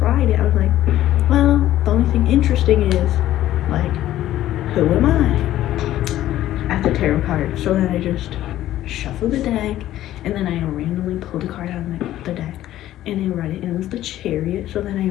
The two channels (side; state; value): right; quieter; 13.6 dB